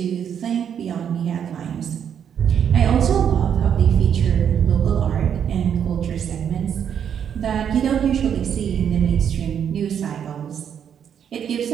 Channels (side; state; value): left; quieter; 8.4 dB